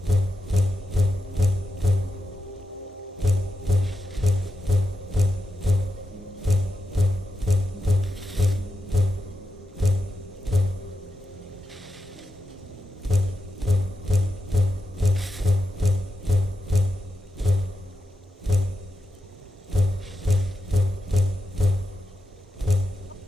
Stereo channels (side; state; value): both; normal; correlation 0.88